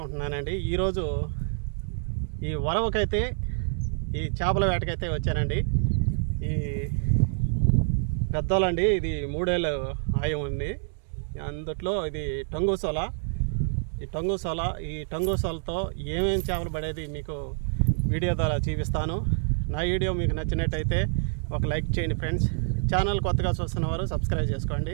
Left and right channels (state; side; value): silent; left; digital silence